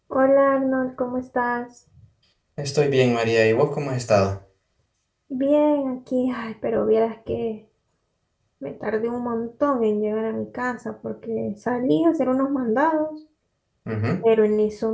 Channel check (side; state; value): both; identical; correlation 1.00